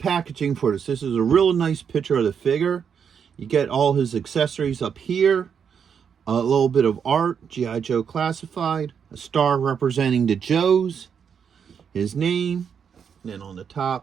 for this. This is a real nice picture of the figure. You get all his accessories up here. A little bit of art, G.I. Joe classified. A star representing the Joes. His name. And then on the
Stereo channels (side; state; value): left; quieter; 7.2 dB